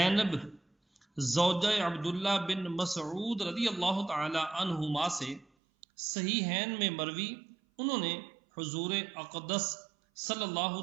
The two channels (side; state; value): left; drops out; at 5.5 s